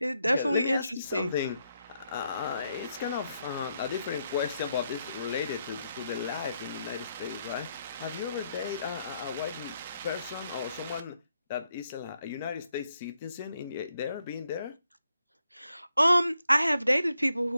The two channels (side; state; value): both; inverted; correlation -0.79